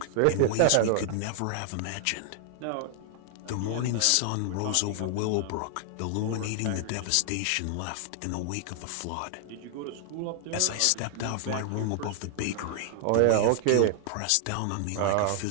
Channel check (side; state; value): both; different; correlation 0.00